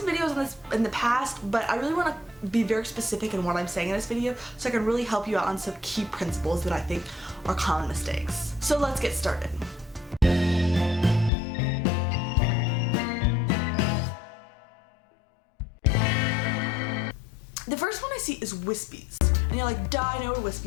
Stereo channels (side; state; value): right; drops out; at 11.3 s